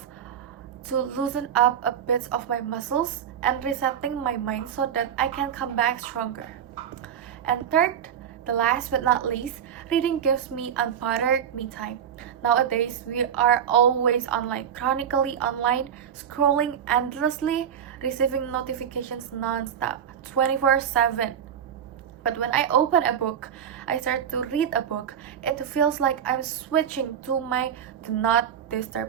to loosen up a bit of my muscles and resetting my mind so that I can come back stronger. And third, the last but not least, reading gives me unbothered me time. Nowadays, we are always online, chronically online, scrolling endlessly, receiving notifications non-stop, 24/7. But when I open a book, I start to read a book, it feels like I'm switching to my do not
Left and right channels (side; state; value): left; quieter; 8.7 dB